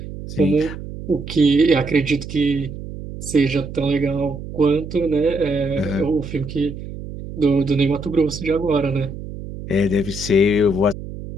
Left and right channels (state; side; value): noise; right; hum, 10 dB below the sound